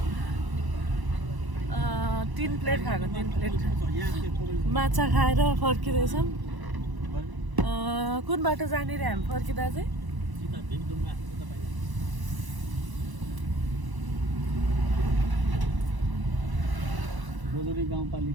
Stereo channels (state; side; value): late; left; 1.0 ms